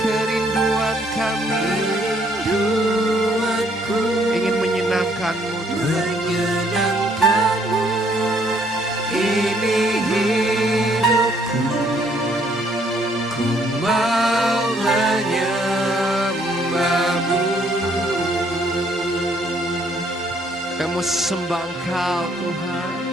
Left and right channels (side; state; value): both; normal; correlation 0.67